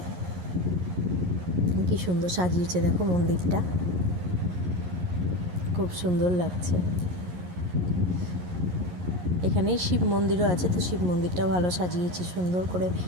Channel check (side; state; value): left; late; 11 ms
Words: কি সুন্দর সাজিয়েছে দেখো মন্দিরটা, খুব সুন্দর লাগছে। এখানেই শিব মন্দিরও আছে, তো শিব মন্দিরটাও ভালো সাজিয়েছে, সুন্দর করে